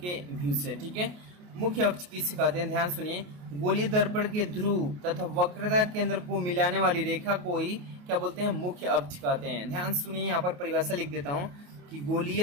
व्यू से। ठीक है, मुख्य अक्ष किससे कहते हैं, ध्यान सुनिए। गोलीय दर्पण के ध्रुव तथा वक्रता केंद्र को मिलाने वाली रेखा को ही क्या बोलते हैं, मुख्य अक्ष कहते हैं। ध्यान सुनिए, यहाँ पर परिभाषा लिख देता हूँ कि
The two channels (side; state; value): left; late; 28 ms